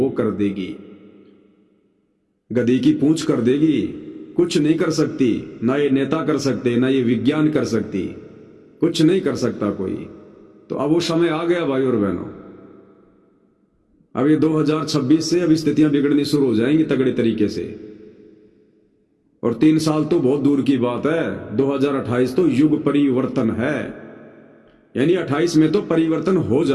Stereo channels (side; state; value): both; identical; correlation 1.00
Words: कर देगी, गधी की पूंछ कर देगी, कुछ नहीं कर सकती। ना ये नेता कर सकते, ना ये विज्ञान कर सकती, कुछ नहीं कर सकता कोई। तो अब वो समय आ गया भाई और बहनों। अब ये 2026 से अब स्थितियां बिगड़नी शुरू हो जाएंगी तगड़े तरीके से। और 3 साल तो बहुत दूर की बात है, 2028 तो युग परिवर्तन है, यानी 28 में तो परिवर्तन हो